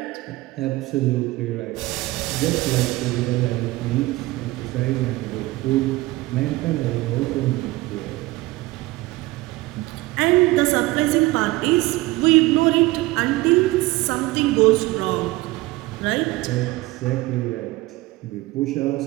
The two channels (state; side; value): quieter; left; 19.7 dB